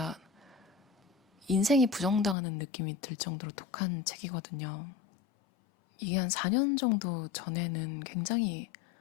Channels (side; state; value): right; drops out; at 2.4 s